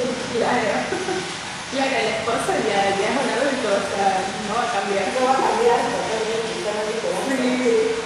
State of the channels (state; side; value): identical; both; correlation 1.00